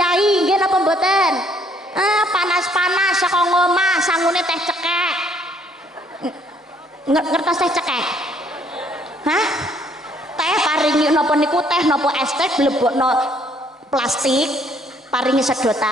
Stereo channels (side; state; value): both; normal; correlation 0.65